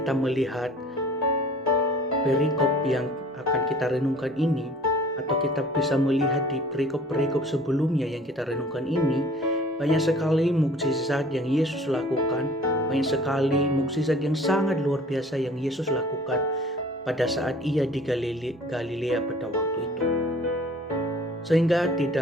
melihat perikop yang akan kita renungkan ini, atau kita bisa melihat di perikop-perikop sebelumnya yang kita renungkan ini, banyak sekali mukjizat yang Yesus lakukan, banyak sekali mukjizat yang sangat luar biasa yang Yesus lakukan pada saat ia di Galilea pada waktu itu. Sehingga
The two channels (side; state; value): both; normal; correlation 0.49